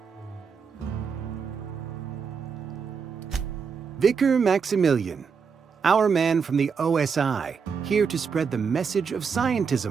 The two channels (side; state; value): left; quieter; 6.0 dB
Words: Vicar Maximilian, our man from the OSI, here to spread the message of